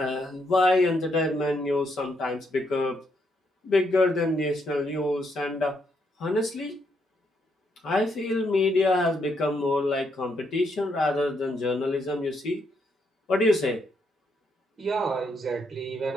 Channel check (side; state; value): both; normal; correlation 0.76